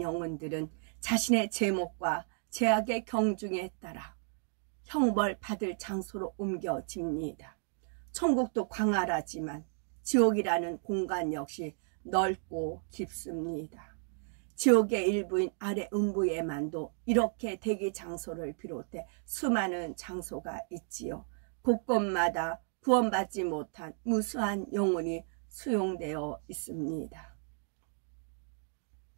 영혼들은 자신의 제목과 제약의 경중에 따라 형벌 받을 장소로 옮겨집니다. 천국도 광활하지만 지옥이라는 공간 역시 넓고 깊습니다. 지옥의 일부인 아래 음부에만도 이렇게 대기 장소를 비롯해 수많은 장소가 있지요. 곳곳마다 구원받지 못한 무수한 영혼이 수용되어 있습니다.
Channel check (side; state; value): left; silent; 56 dB below the other